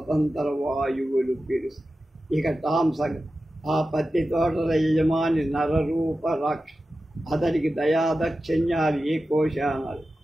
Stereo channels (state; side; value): normal; both; correlation 0.93